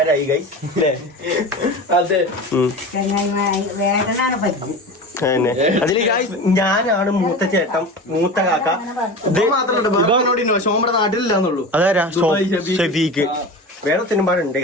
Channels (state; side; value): normal; both; correlation 0.30